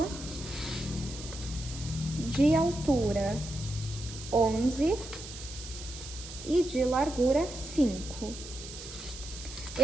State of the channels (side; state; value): right; noise; hiss, 12 dB below the sound